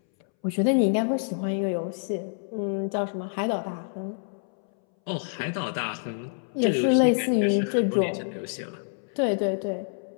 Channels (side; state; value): right; silent; 60 dB below the other